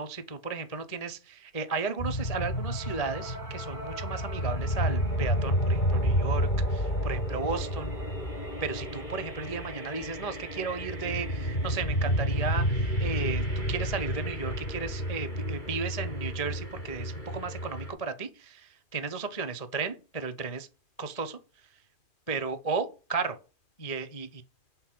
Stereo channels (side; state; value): right; late; 2.4 ms